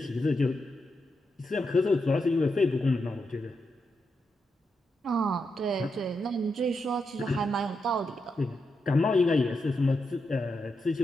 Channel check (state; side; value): normal; both; correlation 0.85